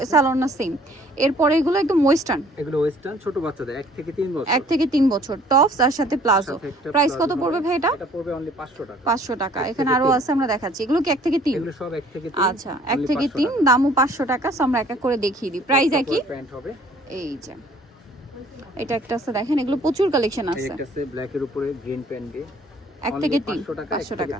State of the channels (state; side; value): normal; both; correlation 0.56